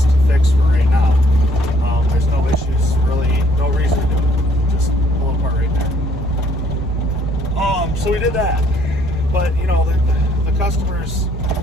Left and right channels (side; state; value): both; normal; correlation 0.64